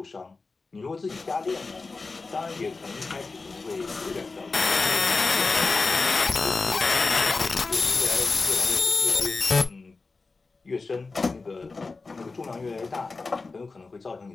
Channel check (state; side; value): quieter; right; 3.9 dB